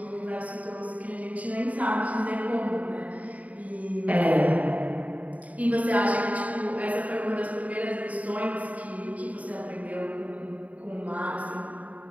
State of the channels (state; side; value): late; left; 0.070 ms